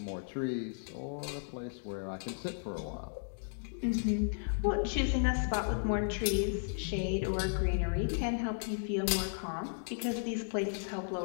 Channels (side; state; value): right; silent; digital silence